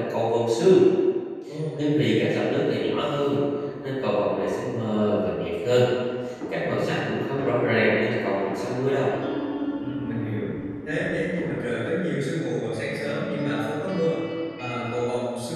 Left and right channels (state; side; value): identical; both; correlation 1.00